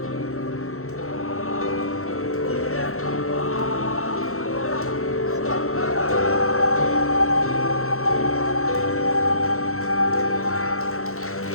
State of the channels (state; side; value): late; right; 0.63 ms